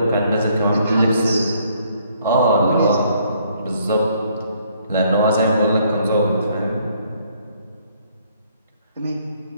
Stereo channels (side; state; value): both; inverted; correlation -0.66